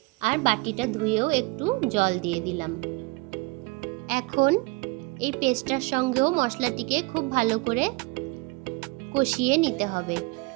আর বাটিটা ধুয়েও একটু জল দিয়ে দিলাম। এখন এই পেস্টটার সঙ্গেও মশলাটিকে খুব ভালো করে কষিয়ে নিতে হবে।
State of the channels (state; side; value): quieter; left; 25.6 dB